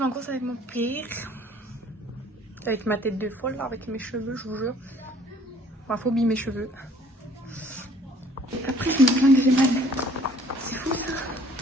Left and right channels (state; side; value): normal; both; correlation 0.57